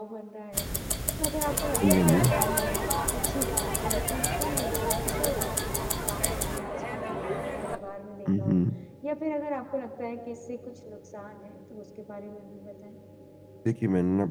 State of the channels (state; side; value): identical; both; correlation 1.00